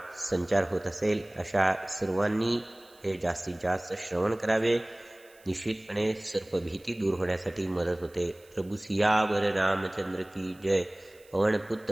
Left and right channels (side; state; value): right; noise; hiss, 28 dB below the sound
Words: संचार होत असेल अशा सर्वांनी हे जास्तीत जास्त श्रवण करावे. निश्चितपणे सर्पभीती दूर होण्यासाठी मदत होते. प्रभू सियावर रामचंद्र की जय.